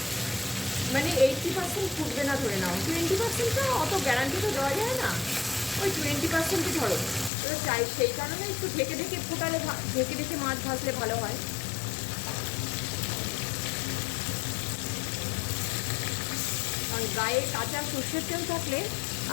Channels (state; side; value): drops out; right; at 7.3 s